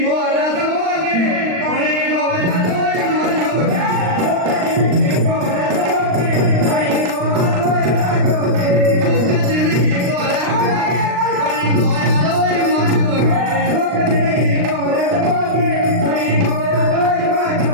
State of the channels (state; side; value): late; left; 39 ms